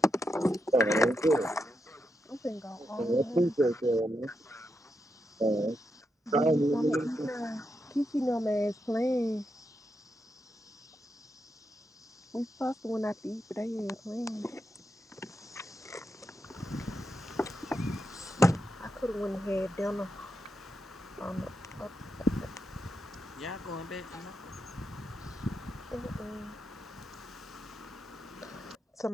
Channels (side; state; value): both; normal; correlation 0.84